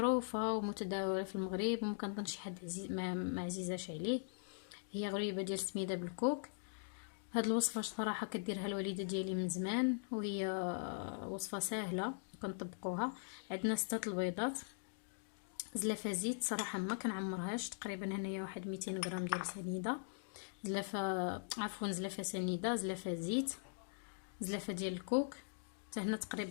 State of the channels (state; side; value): silent; right; digital silence